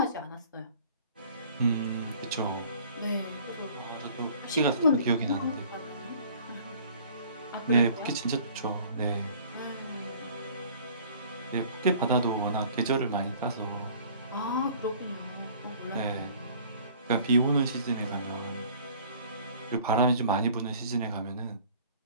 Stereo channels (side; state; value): both; inverted; correlation -0.51